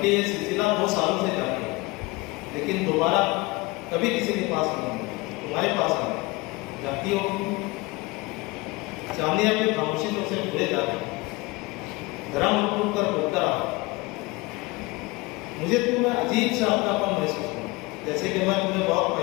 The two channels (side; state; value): right; quieter; 23.1 dB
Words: ये सिलसिला 2 सालों से जारी है, लेकिन दोबारा कभी किसी के पास नहीं, तुम्हारे पास आया। जानती हो चांदी अपनी खामोशी से उसे भूले जाते। धर्म उठ कर बोलता रहा। मुझे तुम्हें अजीब सा अपनापन महसूस हुआ, जैसे कि मैं तुम्हें बहुत